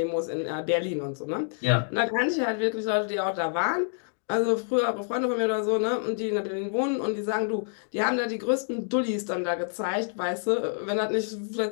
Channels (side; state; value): right; silent; digital silence